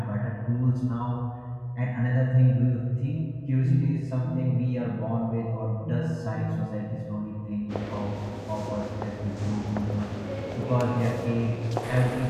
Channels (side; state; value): both; identical; correlation 1.00